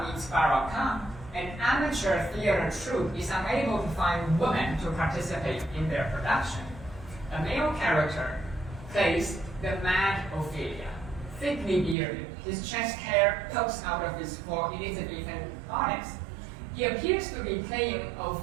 meets Barakah, an amateur theater troupe is unable to find women to participate in their production. A male character plays the mad Ophelia, thickly bearded, his chest hair pokes out of his full Elizabethan bodice. He appears to be playing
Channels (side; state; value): left; drops out; at 12.0 s